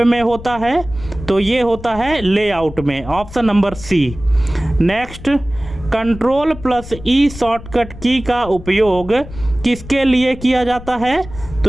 में होता है? तो ये होता है लेआउट में। Option number C. Next, control plus E shortcut की का उपयोग किसके लिए किया जाता है? तो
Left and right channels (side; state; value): left; noise; rumble, 14 dB below the sound